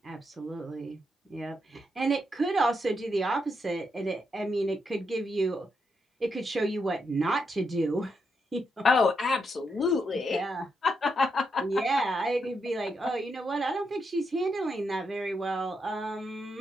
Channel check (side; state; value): both; normal; correlation 0.81